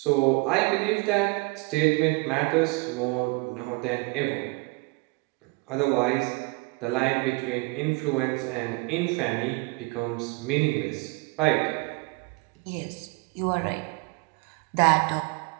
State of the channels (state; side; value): quieter; left; 27.3 dB